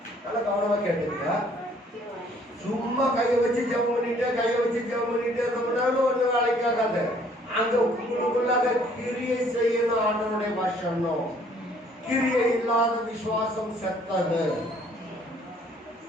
நல்லா கவனமா கேட்டுங்க. சும்மா கையை வச்சு ஜெபம் பண்ணிட்டே ரொம்பனாலும் ஒண்ணு வேலைக்காகாது. அங்க உங்களுக்குள்ளாக கிரியை செய்யணும். ஆண்டவருடைய பாஷணும். கிரியை இல்லாத விசுவாசம் செத்தது.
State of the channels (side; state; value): both; normal; correlation 0.60